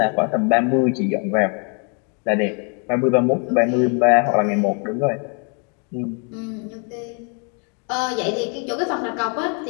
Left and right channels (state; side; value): quieter; right; 38.0 dB